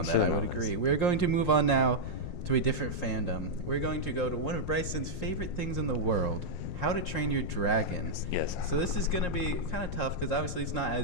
that, I Should've would known agree. this. We're going to move on now to a different fandom. We're going to go to one of Bryson's favorite things in the world, How to Train Your Dragon. Yes. So this is going to be kind of tough because obviously it's not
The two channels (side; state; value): right; late; 5.6 ms